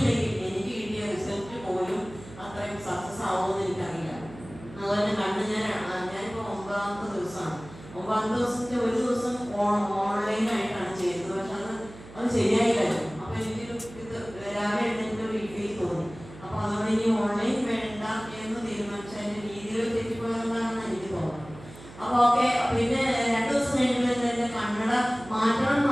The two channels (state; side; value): noise; right; hum, 17 dB below the sound